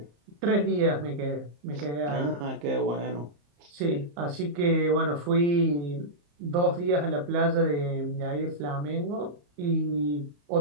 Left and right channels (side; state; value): left; late; 34 ms